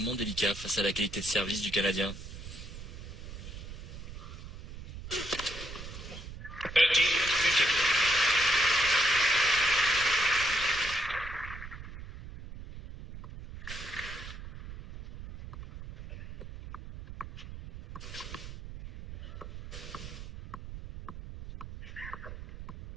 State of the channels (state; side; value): noise; right; rumble, 11 dB below the sound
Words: délicat face à la qualité de service du Canadien. 30-15.